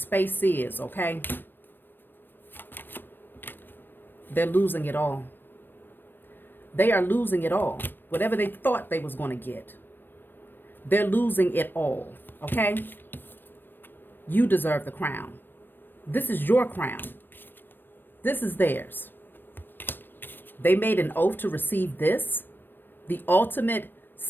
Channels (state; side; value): late; right; 0.095 ms